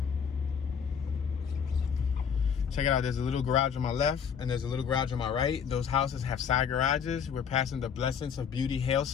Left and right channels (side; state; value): right; quieter; 7.2 dB